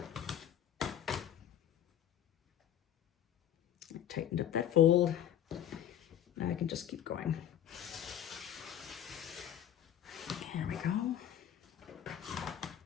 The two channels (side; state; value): right; quieter; 10.4 dB